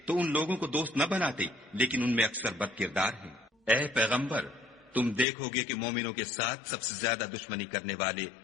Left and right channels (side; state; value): right; drops out; at 5.2 s